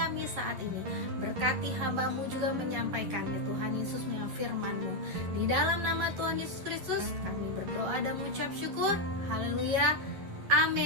saat ini. Berkati hamba-Mu juga menyampaikannya Tuhan Yesus melalui firman-Mu. Di dalam nama Tuhan Yesus Kristus, kami berdoa dan mengucap syukur. Haleluya,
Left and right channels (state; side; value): late; left; 11 ms